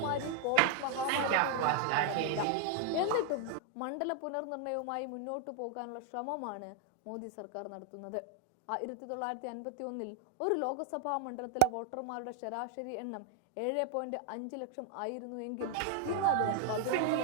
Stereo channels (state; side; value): different; both; correlation 0.00